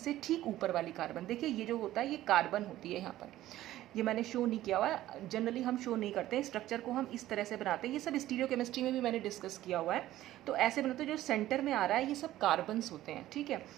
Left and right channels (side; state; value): left; quieter; 14.5 dB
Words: ठीक ऊपर वाली कार्बन, देखिए ये जो होता है ये कार्बन होती है। यहाँ पर ये मैंने शो नहीं किया हुआ है, जनरली हम शो नहीं करते हैं, स्ट्रक्चर को हम इस तरह से बनाते हैं। ये सब स्टीरियोकेमिस्ट्री में भी मैंने डिस्कस किया हुआ है। तो ऐसे बनाते हैं, जो सेंटर में आ रहा है ये सब कार्बन्स होते हैं, ठीक है।